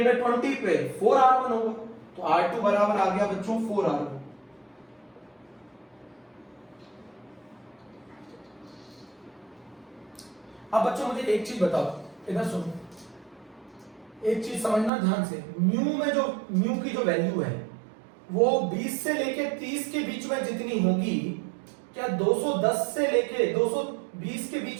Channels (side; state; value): left; drops out; at 14.9 s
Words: पे 4R1 होगा, तो R2 बराबर आ गया बच्चों 4R1। अब बच्चों मुझे एक चीज बताओ, इधर सुनो, एक चीज समझना ध्यान से। म्यू की जो वैल्यू है वो 20 से लेके 30 के बीच में जितनी होगी, क्या 210 से लेके 220 के